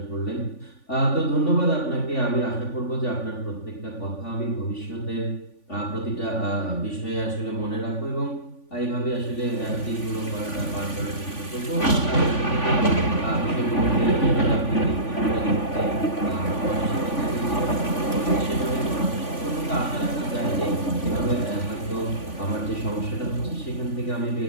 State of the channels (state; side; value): late; right; 3.5 ms